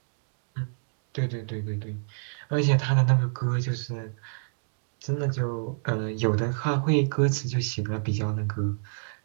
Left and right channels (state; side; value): silent; left; digital silence